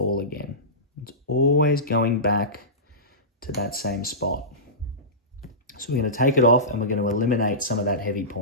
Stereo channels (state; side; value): normal; both; correlation -0.20